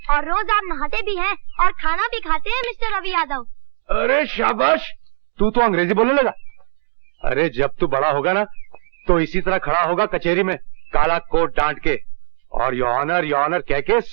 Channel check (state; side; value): silent; left; digital silence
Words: और रोज आप नहाते भी हैं और खाना भी खाते हैं मिस्टर रवि यादव। अरे शाबाश, तू तो अंग्रेजी बोलने लगा। अरे जब तू बड़ा होगा ना, तो इसी तरह खड़ा होगा कचहरी में, काला कोट डांट के, और योर ऑनर कह के